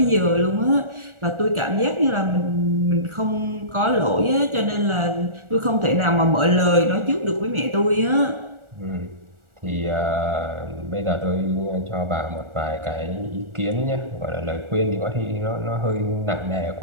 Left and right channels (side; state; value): left; late; 1.4 ms